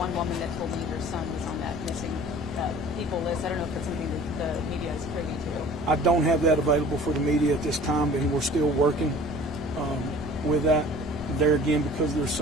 woman that told me her son was on that missing people list. I don't know if it's something that the media is privy to. I don't have that available for the media at this time, and we're still working with that. There again, because there's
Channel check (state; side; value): normal; both; correlation 0.46